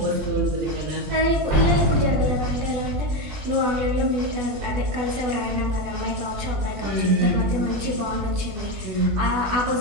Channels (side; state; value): left; late; 20 ms